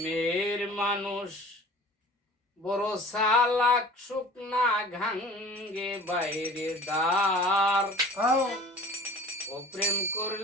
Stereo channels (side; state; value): both; normal; correlation 0.45